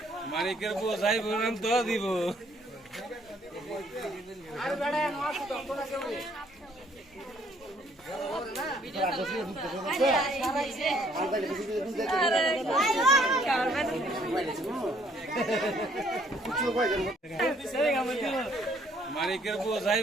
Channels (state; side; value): normal; both; correlation 0.64